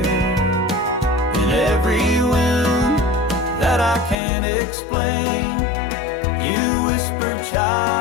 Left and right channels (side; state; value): right; drops out; at 4.2 s